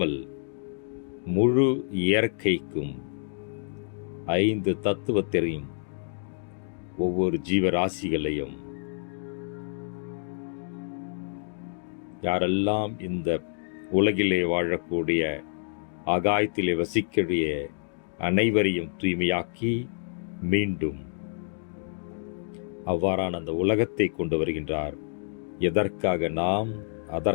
முழு இயற்கைக்கும் 5 தத்துவத்தையும், ஒவ்வொரு ஜீவராசிகளையும், யாரெல்லாம் இந்த உலகிலே வாழக்கூடிய, ஆகாயத்திலே வசிக்கக்கூடிய அனைவரையும் தூய்மையாக்கி மீண்டும் அவ்வாறான அந்த உலகத்தை கொண்டு வருகின்றார்.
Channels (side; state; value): right; silent; digital silence